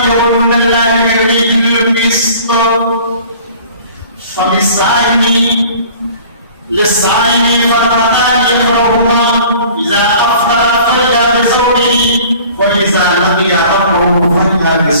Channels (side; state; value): both; inverted; correlation -0.48